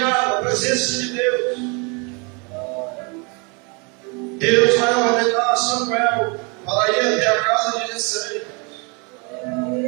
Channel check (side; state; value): left; quieter; 31.8 dB